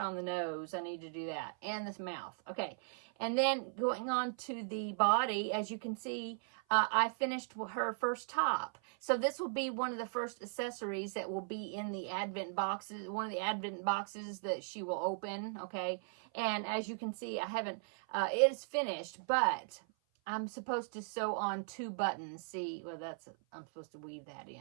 the nose. I need to do that, and this mouth. Okay, and then going on to the body, as you can see, I finished her first top. So this will be one of the first accessories that will be in the Advent boxes, one of the Advent boxes that she will open. Okay, and as you can see, I haven't. It is finished, but I'm supposed to sew on 2 buttons. See, well, I'm supposed to weave that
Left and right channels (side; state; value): left; silent; 53 dB below the other